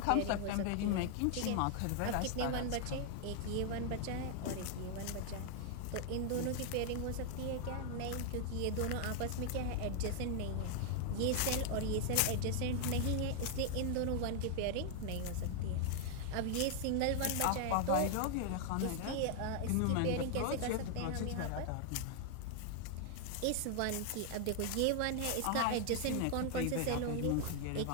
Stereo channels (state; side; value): different; both; correlation 0.00